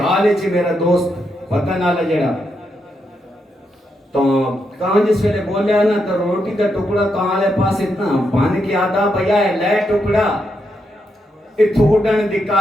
ہے چی میرا دوست پتہ نہ لجڑا تو کہاں جس ویلے بولیا نا تو روٹی کا ٹکڑا کہاں لے پاس اتنا بان کی آدھا بھیا ہے لے ٹکڑا اتھوڑن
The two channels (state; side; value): normal; both; correlation 0.82